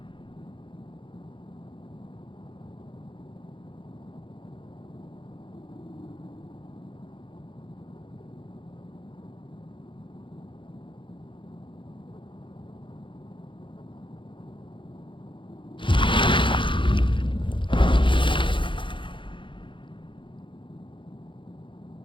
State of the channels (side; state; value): right; late; 0.24 ms